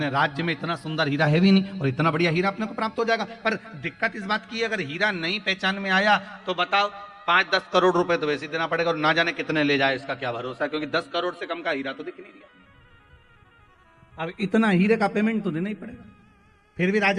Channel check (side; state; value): both; identical; correlation 1.00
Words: राज्य में इतना सुंदर हीरा है भी नहीं, और इतना बढ़िया हीरा अपने को प्राप्त हो जाएगा। पर दिक्कत इस बात की है, अगर हीरा नहीं पहचान में आया तो बताओ 5-10 करोड़ रुपए तो वैसे ही देना पड़ेगा, और ना जाने कितने ले जाए इसका क्या भरोसा, क्योंकि 10 करोड़ से कम का हीरा तो दिख नहीं रहा। अब इतना हीरे का पेमेंट तो देना ही पड़ेगा। फिर भी